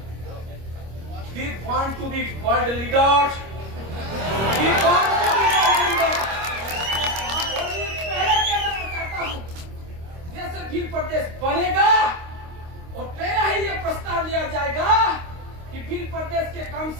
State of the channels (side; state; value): left; late; 26 ms